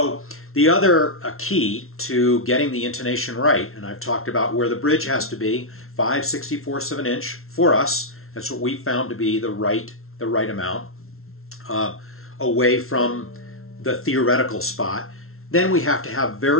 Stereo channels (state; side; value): late; right; 0.62 ms